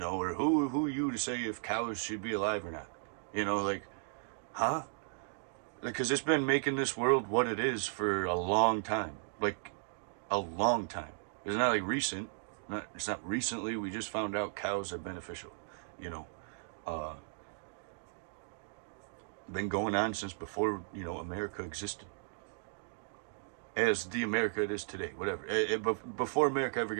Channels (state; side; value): silent; left; digital silence